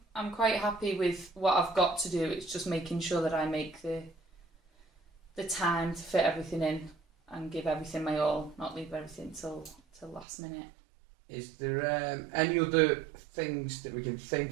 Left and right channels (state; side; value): drops out; left; at 10.2 s